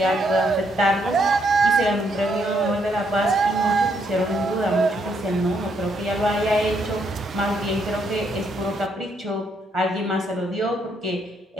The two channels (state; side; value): normal; both; correlation 0.74